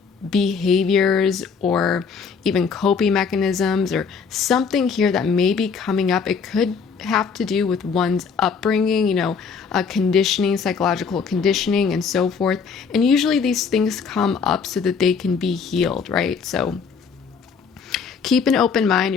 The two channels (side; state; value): right; quieter; 5.8 dB